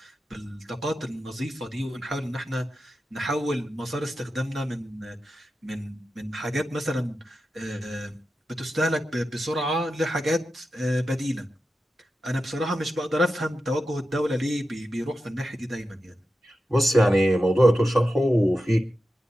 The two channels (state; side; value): normal; both; correlation 0.91